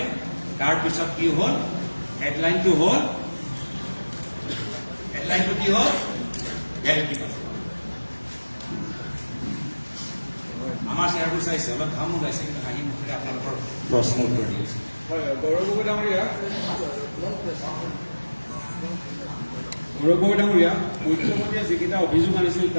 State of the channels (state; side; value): inverted; both; correlation -1.00